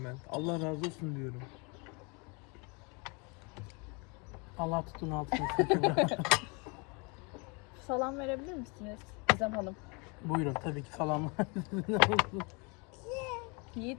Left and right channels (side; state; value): right; quieter; 31.2 dB